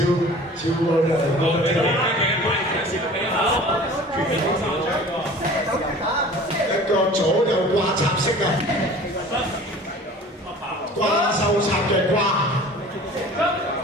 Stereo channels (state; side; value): normal; both; correlation 0.44